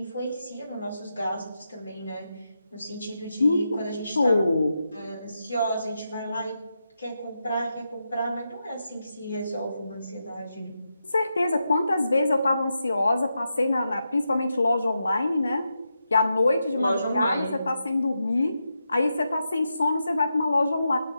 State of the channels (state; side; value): inverted; both; correlation -0.87